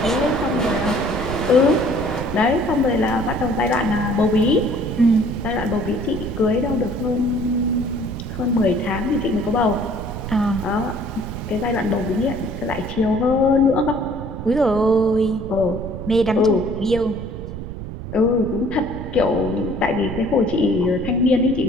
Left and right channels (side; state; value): right; noise; rumble, 8 dB below the sound